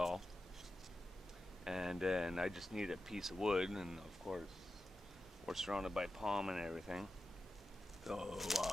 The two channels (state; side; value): normal; both; correlation 0.91